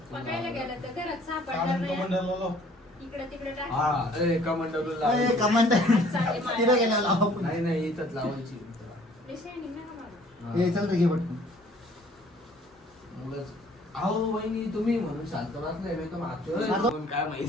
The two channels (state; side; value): normal; both; correlation 0.57